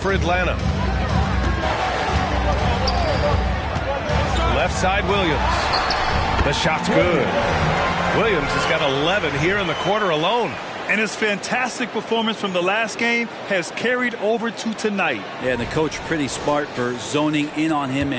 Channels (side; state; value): both; identical; correlation 1.00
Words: for Atlanta. Left side Williams. The shot's good. Williams has got 11 here in the quarter alone. And his fantastic performance from the last game has carried over to tonight. Yeah, and the coach pretty smart for zoning in on him